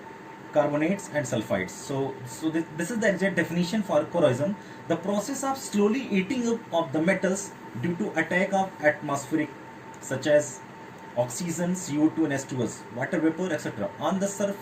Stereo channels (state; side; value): identical; both; correlation 1.00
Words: and sulfides. So this is the exact definition for corrosion: the process of slowly eating up of the metals due to attack of atmospheric, such as oxygen, CO2 and H2S, water vapor, etc., on the